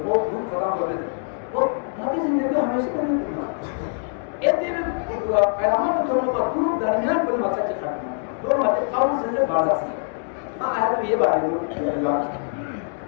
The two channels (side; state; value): right; silent; 58 dB below the other